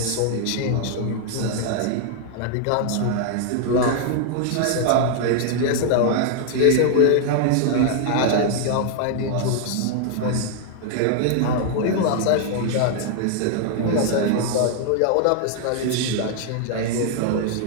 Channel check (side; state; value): both; different; correlation 0.00